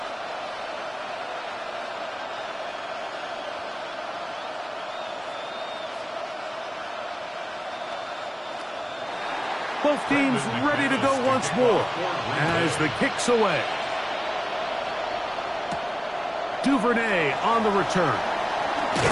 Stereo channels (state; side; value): identical; both; correlation 1.00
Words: Both teams ready to go once more as the kick's away. Duvernay on the return.